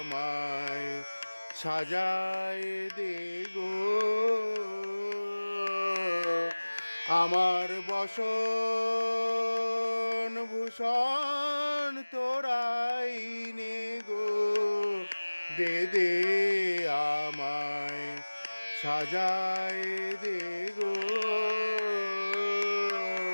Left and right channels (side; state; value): both; inverted; correlation -1.00